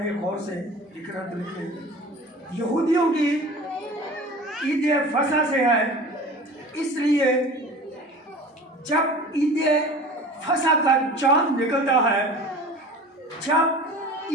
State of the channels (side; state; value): both; normal; correlation 0.39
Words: गौर से, लिखना तो लिख लें, यहूदियों की ईद फसा से है, इसलिए जब ईद फसा का चांद निकलता है, जब